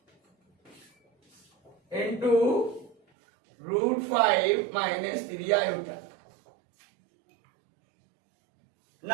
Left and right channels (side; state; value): left; drops out; at 3.0 s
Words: into root 5 minus 3 iota.